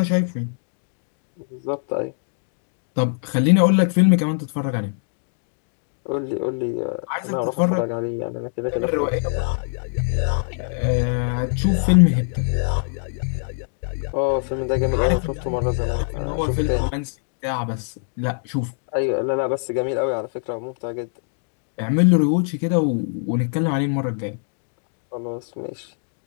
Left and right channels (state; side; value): silent; right; digital silence